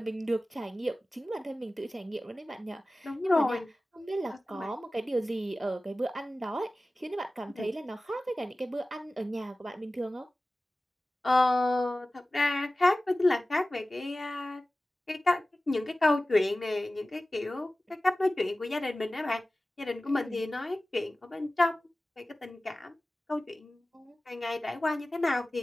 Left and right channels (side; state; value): both; normal; correlation 0.96